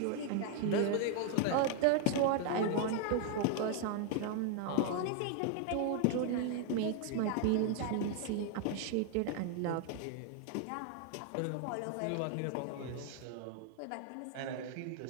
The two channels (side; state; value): both; different; correlation 0.00